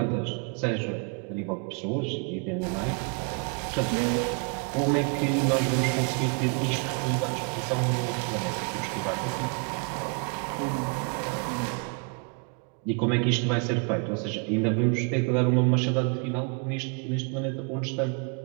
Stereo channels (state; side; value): quieter; left; 35.9 dB